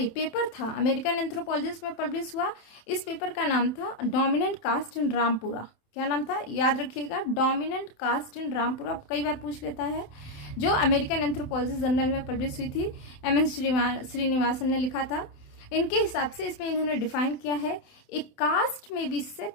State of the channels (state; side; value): late; right; 27 ms